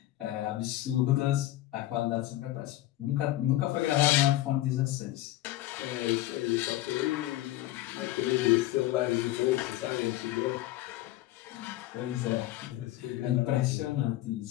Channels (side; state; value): right; quieter; 15.5 dB